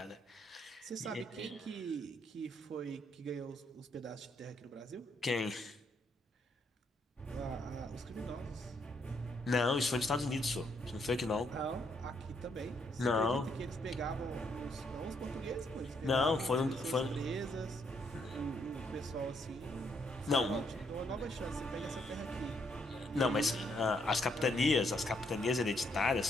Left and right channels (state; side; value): normal; both; correlation 0.73